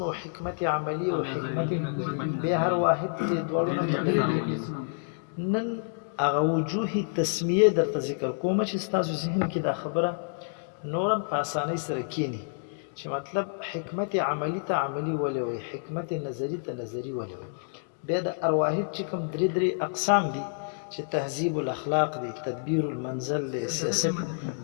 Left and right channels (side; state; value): right; silent; digital silence